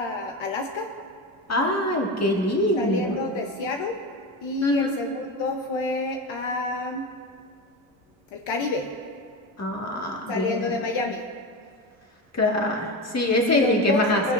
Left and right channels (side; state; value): both; normal; correlation 0.23